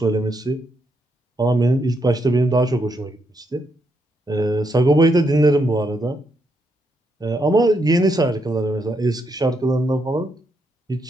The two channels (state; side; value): normal; both; correlation 0.79